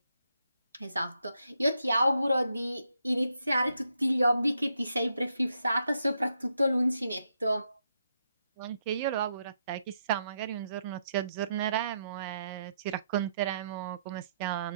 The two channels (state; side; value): inverted; both; correlation -0.78